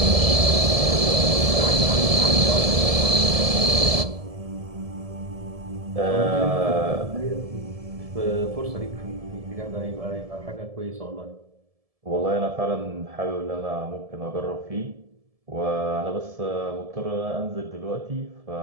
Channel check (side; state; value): left; late; 1.7 ms